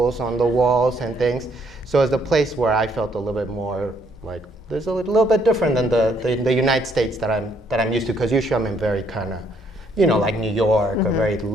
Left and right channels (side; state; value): both; normal; correlation 0.69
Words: on the walls and things. So it's a place where I felt a little bit more like, there's a little bit different than the United States that I'm used to, because usually I'm in very kind of, you know, like New York or very